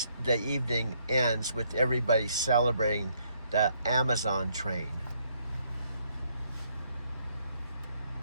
evening ends with everybody celebrating the Amazon train.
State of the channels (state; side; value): inverted; both; correlation -0.70